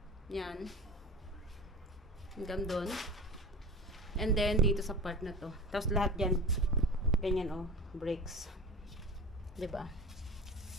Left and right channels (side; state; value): both; normal; correlation 0.33